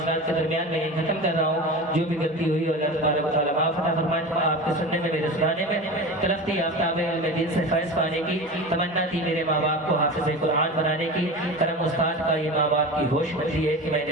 کے درمیان میں ختم کر رہا ہوں. جو بھی غلطی ہوئی اللہ تبارک و تعالیٰ معاف عطا فرمائے. آپ کے سننے میں, میرے سنانے میں طرف تھی آفتاب علم دین سے فیض پانے کی, تمنا تھی میرے ماں باپ کو حافظ قرآن بنانے کی. کرم استاد کا یہ ماں باپ کی ہوش بچی ہے کہ میں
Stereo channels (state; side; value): normal; both; correlation 0.30